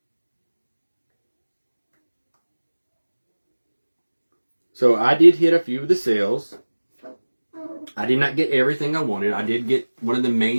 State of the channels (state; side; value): inverted; both; correlation -1.00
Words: So I did hit a few of the sales. I did not get everything I wanted. I did get one of the